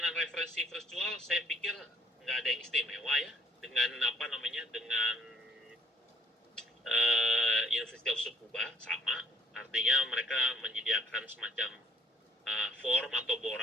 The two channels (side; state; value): both; normal; correlation 0.62